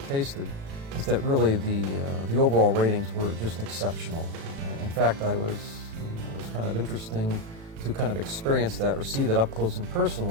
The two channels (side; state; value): left; late; 36 ms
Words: is that really the overall ratings were just exceptional. In fact, it was kind of interesting to kind of experience that or see that up close and